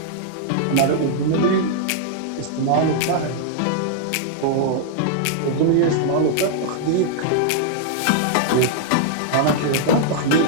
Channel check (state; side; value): different; both; correlation -0.01